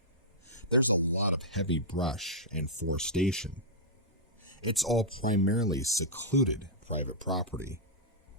There's a lot of heavy brush and forestation. It's all primarily secluded private property.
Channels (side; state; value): both; normal; correlation -0.10